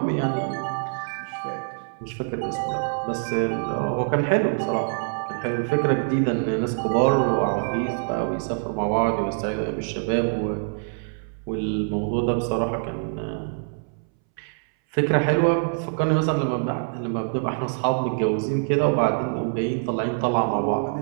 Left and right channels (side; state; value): left; silent; 62 dB below the other